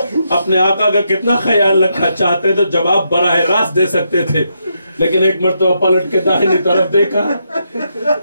اپنے آقا کا کتنا خیال رکھا، چاہتے تو جواب براہ راست دے سکتے تھے، لیکن ایک مرتبہ پلٹ کے داہنی طرف دیکھا،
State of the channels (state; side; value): inverted; both; correlation -0.81